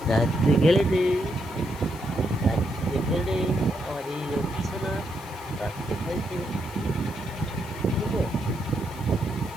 রাত্রে খেলেটে, রাত্রে খেলে, আমার এই রকি সোনা রাত্রে খাইতে, বুঝছো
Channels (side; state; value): left; noise; hiss, 20 dB below the sound